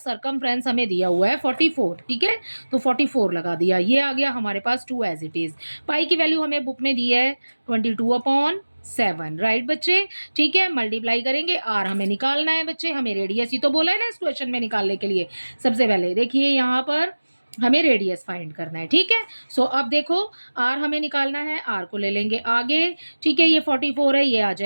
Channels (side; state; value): both; inverted; correlation -1.00